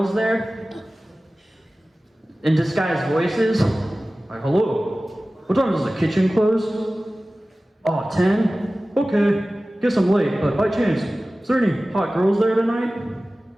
there?" In disguised voices. Like, "Hello, what time does the kitchen close?" "Oh, 10? Okay, guess I'm late, but by chance, is there any hot girls there tonight?"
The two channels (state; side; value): normal; both; correlation 0.97